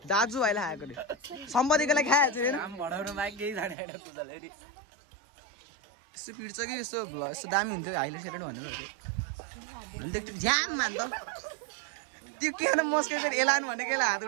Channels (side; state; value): left; drops out; at 3.8 s